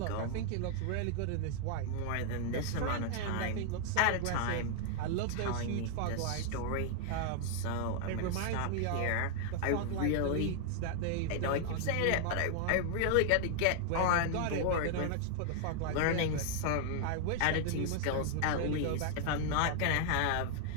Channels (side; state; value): both; different; correlation 0.00